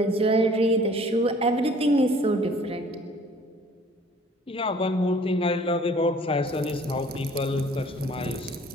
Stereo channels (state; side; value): normal; both; correlation 0.53